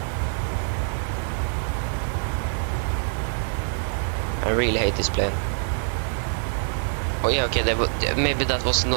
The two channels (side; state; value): left; silent; 62 dB below the other